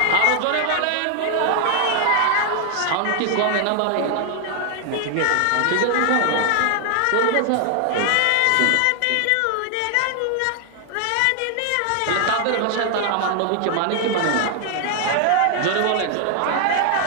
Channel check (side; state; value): both; different; correlation 0.00